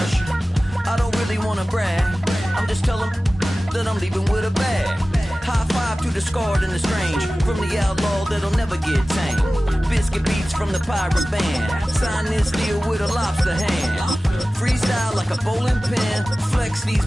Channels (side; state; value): both; normal; correlation 0.97